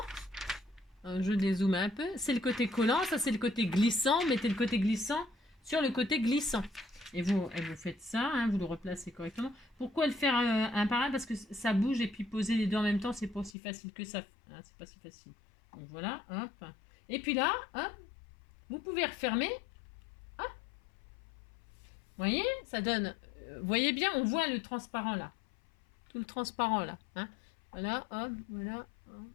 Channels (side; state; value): right; drops out; at 13.6 s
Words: Je dézoome un peu. C'est le côté collant, ça c'est le côté glissant. Mettez le côté glissant sur le côté glissant. Et vous faites ça, hein, vous le replacez correctement. Pourquoi le faire un par un? Parce que ça bouge et puis poser les deux en même temps, c'est pas aussi facile que ça. Hein, c'est pas si facile. Donc voilà, hop. Et puis là, hop, vous pouvez refermer. Hop. Vous voyez, ça donne... Vous voyez bien, on voit le transparent là. Tout le transparent là. Hein. Voilà, hop, voilà, hop,